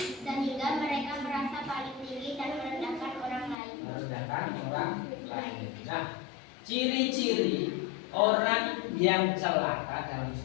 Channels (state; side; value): drops out; right; at 3.6 s